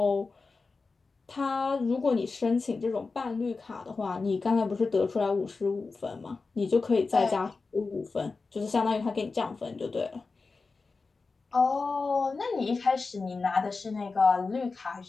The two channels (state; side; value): quieter; right; 4.1 dB